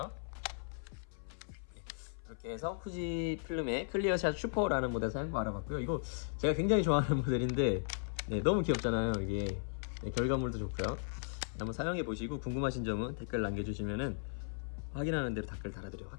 네. 이렇게 해서 후지 필름의 클리어샷 슈퍼라는 모델 사용법 알아봤고요. 이거 제가 굉장히 좋아하는 모델인데 네, 너무 귀엽잖아요. 이게 네, 결과물도 좋고요. 한번 사용해 보시고 궁금하신 점은 댓글 남겨주시면은 확인하는 대로 댓글 달아드리도록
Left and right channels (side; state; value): right; silent; 53 dB below the other